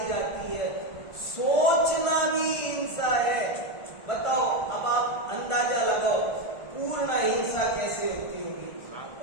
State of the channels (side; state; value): right; late; 1.4 ms